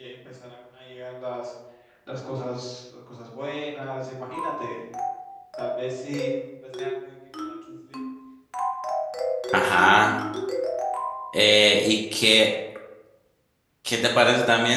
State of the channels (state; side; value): identical; both; correlation 1.00